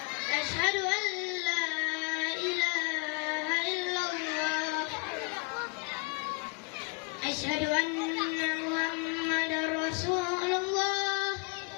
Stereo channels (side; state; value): right; quieter; 34.5 dB